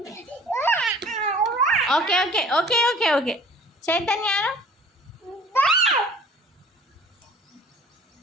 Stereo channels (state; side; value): normal; both; correlation 0.49